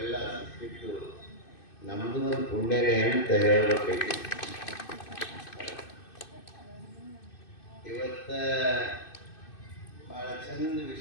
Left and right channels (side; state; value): right; late; 2.6 ms